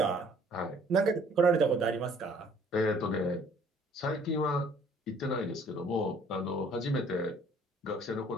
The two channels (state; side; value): normal; both; correlation 0.57